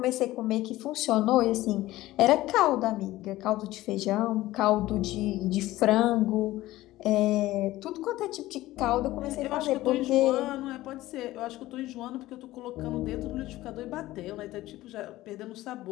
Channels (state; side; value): quieter; right; 16.6 dB